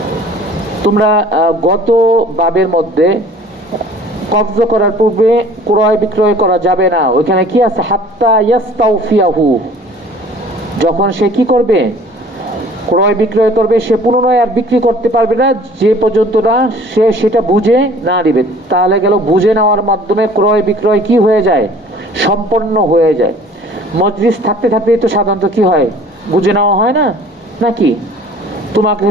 তোমরা গত বাবের মধ্যে কবজ করার পূর্বে ক্রয় বিক্রয় করা যাবে না, ওইখানে কি আছে? হাত্তা ইয়াস্তাউফিয়াহু, যখন সে কি করবে? ক্রয় বিক্রয় করবে, সে পুনরায় আর বিক্রি করতে পারবে না যে পর্যন্ত না সে সেটা বুঝে না নিবে। তাহলে গেল বুঝে নেওয়ার মাধ্যমে ক্রয় বিক্রয় কি হয়ে যায়? সম্পন্ন হয়ে যায়। মজলিস থাকতে থাকতে তো সাধারণত কি হয়? বুঝে নেওয়া হয় না নাকি? তোমাকে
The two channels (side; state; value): both; normal; correlation 0.50